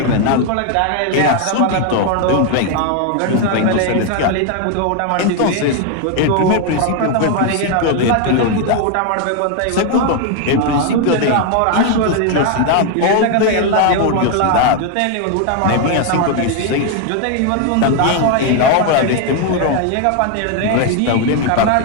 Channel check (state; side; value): different; both; correlation 0.01